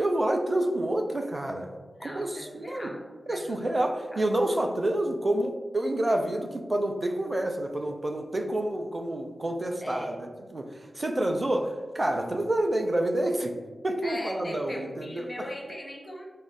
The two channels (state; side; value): normal; both; correlation 0.94